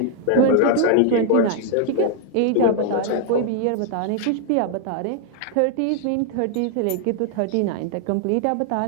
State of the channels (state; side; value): different; both; correlation 0.00